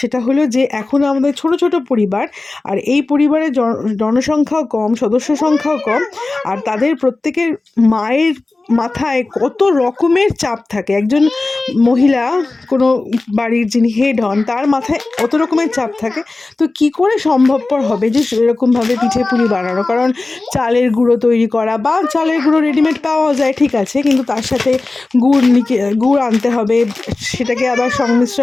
সেটা হলো যে এখন আমাদের ছোট ছোট পরিবার, আর এই পরিবারের জনসংখ্যাও কম, সদস্য সংখ্যাও কম, আর তাদের প্রত্যেকের মায়ের মাথায় কত রকমের চাপ থাকে। একজন মহিলা, কোনো বাড়ির যিনি হেড হন, তার মাথায় কত রকমের চাপ থাকে। তো কি করে সম্ভবপর হবে যে সেরকমভাবে পিঠে পুলি বানানো? কারণ চালের গুঁড়ো তৈরি করা, বা চালের গুঁড়ো রেডিমেড পাওয়া যায় ঠিক আছে, কিন্তু তার সাথে গুড় আনতে হবে, সেটাকে আবার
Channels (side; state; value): right; quieter; 3.3 dB